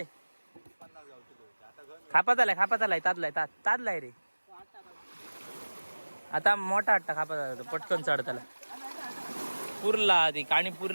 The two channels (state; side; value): inverted; both; correlation -1.00